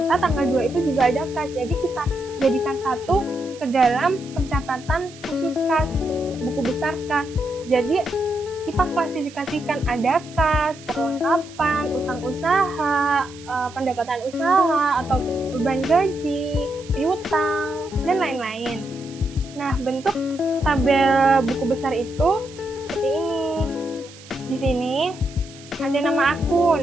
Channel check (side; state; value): right; noise; hiss, 20 dB below the sound